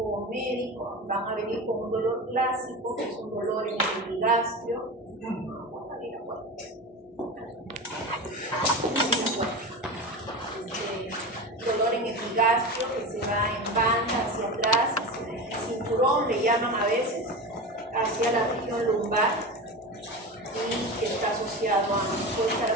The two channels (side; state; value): both; normal; correlation 0.26